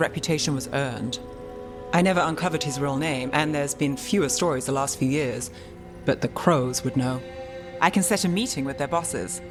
was earned. I never uncovered his real name, and there's been fewer stories the last few years, but the Crows would know. I can set a meeting with their bosses.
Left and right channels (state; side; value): identical; both; correlation 1.00